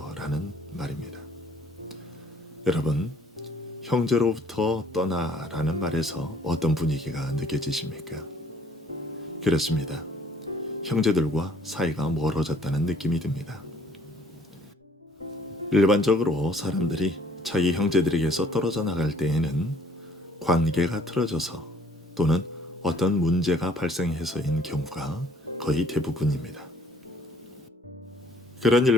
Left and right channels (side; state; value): both; normal; correlation 0.59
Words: 라는 말입니다. 여러분, 형제로부터 떠나라는 말에서 어떤 분위기가 느껴지십니까? 그렇습니다. 형제들과 사이가 멀어졌다는 느낌이 듭니다. 일반적으로 사람들이 자기 형제들에게서 떨어져 나갈 때에는 관계가 틀어져서 또는 어떤 문제가 발생해서인 경우가 거의 대부분입니다. 그런